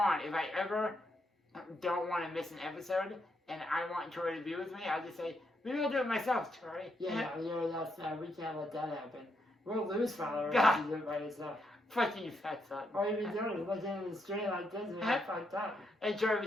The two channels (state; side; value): normal; both; correlation 0.79